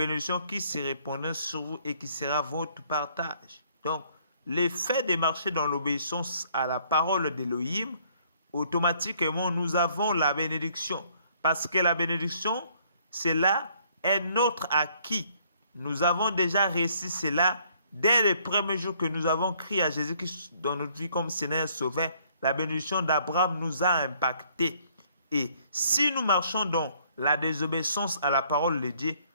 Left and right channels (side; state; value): both; inverted; correlation -0.64